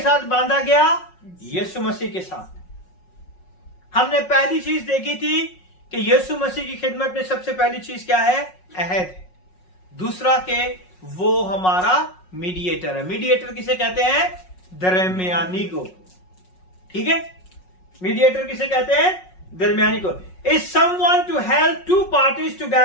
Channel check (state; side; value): late; right; 5.5 ms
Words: बांधा गया? यीशु मसीह के साथ। हमने पहली चीज देखी थी कि यीशु मसीह की खिदमत में सबसे पहली चीज क्या है? अहद है। दूसरा के वो हमारा मीडिएटर है। मीडिएटर किसे कहते हैं? दरमियानी को। ठीक है, मीडिएटर किसे कहते हैं? दरमियानी को। Is someone to help two parties